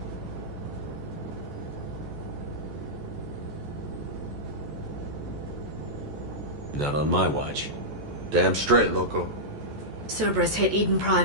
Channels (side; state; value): left; late; 14 ms